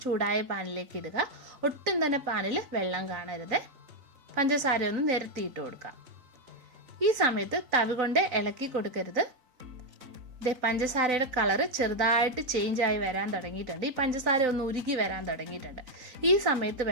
ചൂടായ പാനിലേക്ക് ഇടുക. ഒട്ടും തന്നെ പാനിൽ വെള്ളം കാണരുത്. പഞ്ചസാര ഒന്ന് നിരത്തിയിട്ട് കൊടുക്കാം. ഈ സമയത്ത് തവി കൊണ്ട് ഇളക്കി കൊടുക്കരുത്. പഞ്ചസാരയുടെ കളറ് ചെറുതായിട്ട് ചേഞ്ച് ആയി വരാൻ തുടങ്ങിയിട്ടുണ്ട്. ഈ പഞ്ചസാര ഒന്ന് ഉരുകി വരാൻ തുടങ്ങിയിട്ടുണ്ട്. ഈ സമയത്ത്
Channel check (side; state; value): left; late; 4.0 ms